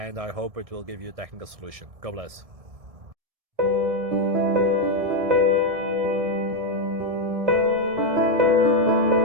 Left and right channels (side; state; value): left; late; 1.7 ms